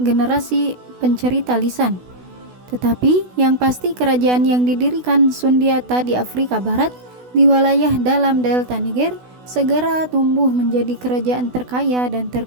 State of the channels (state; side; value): late; left; 16 ms